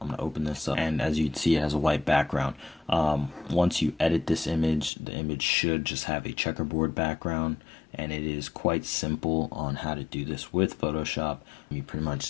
to open this up. And as you can see, it has a white background. Once you edit this image, the image should just have a checkerboard background. And it is quite simple on how to do this with Photoshop. You pretty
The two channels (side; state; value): right; drops out; at 4.9 s